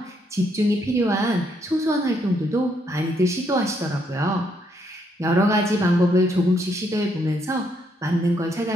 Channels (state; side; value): normal; both; correlation 0.74